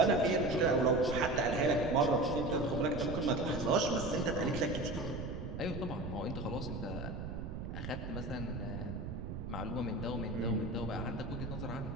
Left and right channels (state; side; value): noise; right; rumble, 6 dB below the sound